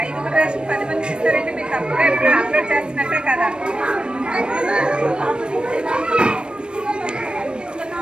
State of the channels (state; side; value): late; left; 0.054 ms